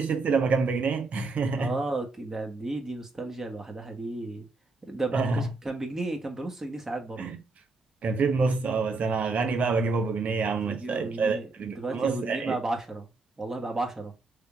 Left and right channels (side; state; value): left; quieter; 3.7 dB